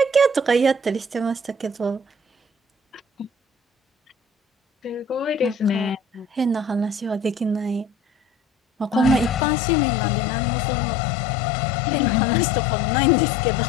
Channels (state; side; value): drops out; right; at 9.5 s